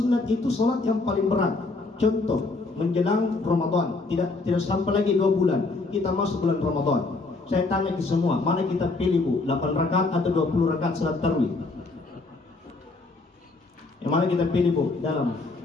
itu salat yang paling berat. Contoh, menjelang Ramadan, tidak sampai lagi 2 bulan kita masuk bulan Ramadan. Saya tanya ke semua, mana kita pilih Bu? 8 rakaat atau 20 rakaat salat tarawih? Yang mana kita pilih Bu? Dalam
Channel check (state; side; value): quieter; right; 3.5 dB